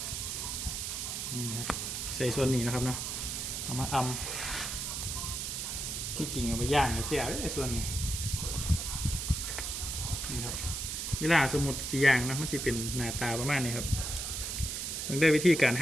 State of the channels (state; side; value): noise; right; hiss, 3 dB below the sound